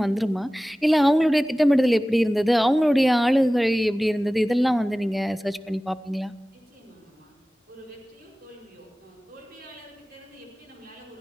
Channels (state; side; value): normal; both; correlation 0.97